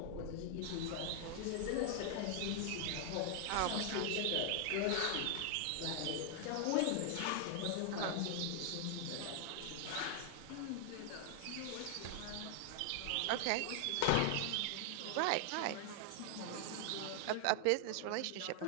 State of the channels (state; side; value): different; both; correlation 0.00